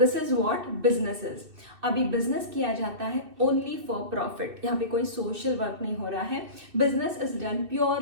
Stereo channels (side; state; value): left; late; 2.6 ms